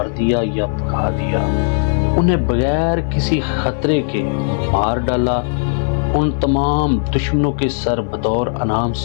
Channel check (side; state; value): right; silent; digital silence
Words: دیا یا بھگا دیا، انہیں بغیر کسی خطرے کے مار ڈالا۔ ان تمام دشمنوں کے سر بطور انعام